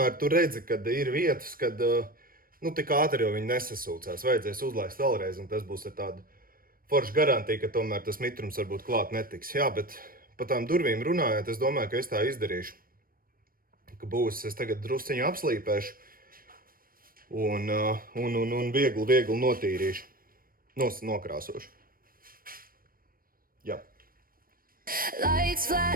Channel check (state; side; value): late; left; 0.41 ms